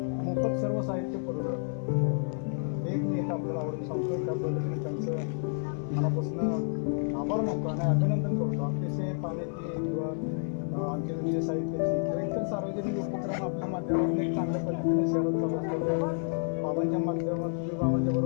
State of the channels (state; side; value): silent; right; 56 dB below the other